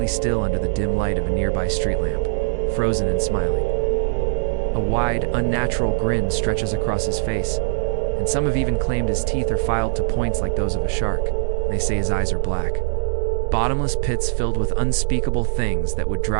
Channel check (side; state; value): left; silent; digital silence